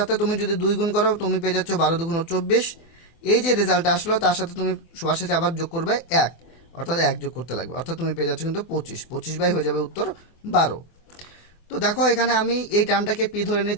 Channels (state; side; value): late; right; 24 ms